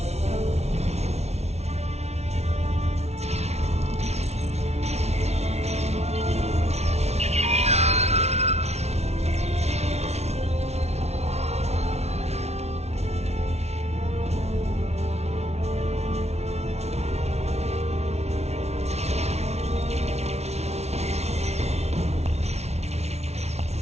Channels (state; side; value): late; left; 0.31 ms